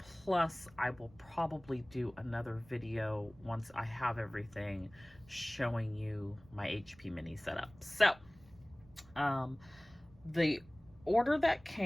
I will probably do another video once I have everything showing you my HP mini setup. So the order that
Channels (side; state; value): right; noise; rumble, 25 dB below the sound